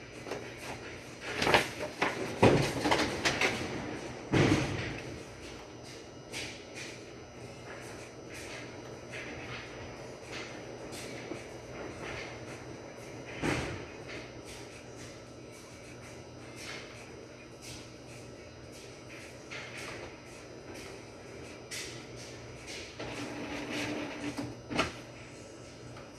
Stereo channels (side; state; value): both; identical; correlation 1.00